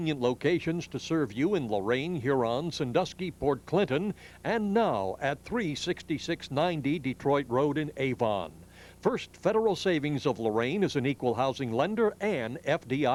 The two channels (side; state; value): both; identical; correlation 1.00